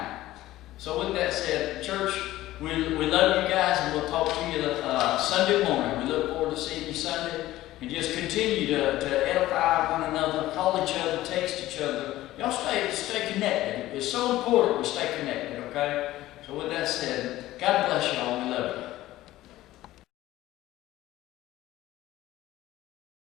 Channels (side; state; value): right; quieter; 15.7 dB